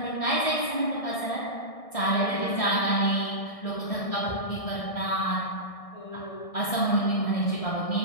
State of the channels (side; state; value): right; late; 1.6 ms